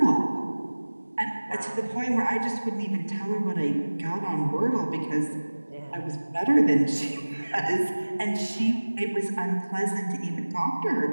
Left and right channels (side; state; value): both; inverted; correlation -1.00